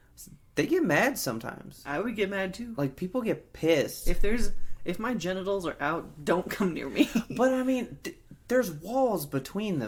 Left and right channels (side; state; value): both; identical; correlation 1.00